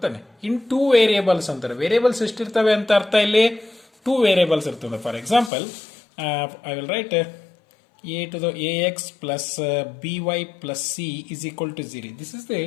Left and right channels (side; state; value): right; drops out; at 5.5 s